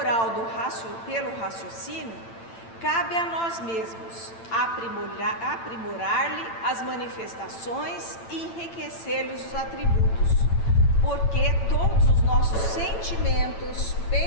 pelo raciocínio, cabe a nós mesmos aprimorar-lhe as manifestações e enriquecer-lhes os atributos, porque todos os nossos sentimentos,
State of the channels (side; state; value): right; late; 8.9 ms